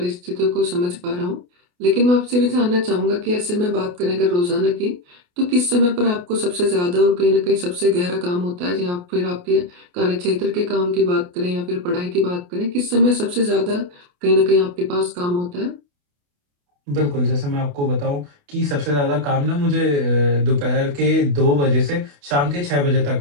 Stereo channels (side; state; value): left; late; 28 ms